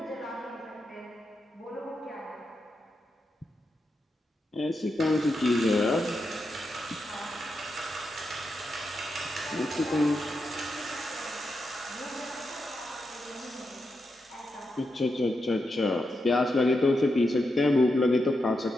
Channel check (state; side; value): normal; both; correlation 0.86